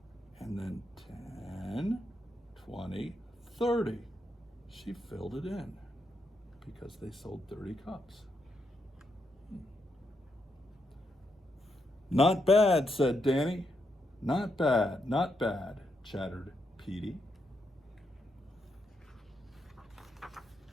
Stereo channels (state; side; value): normal; both; correlation 0.81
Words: and then 10, 20, 30. She filled it in because they sold 30 cups. Not bad, said Danny. Not bad, not bad, chattered Petey.